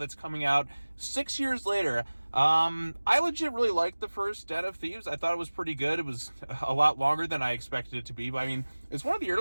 coming out 6 years later. I legit really liked the first Den of Thieves. I thought it was pretty good. It was a lot longer than I expected it to be. But I mean, it's one of the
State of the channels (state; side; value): inverted; both; correlation -1.00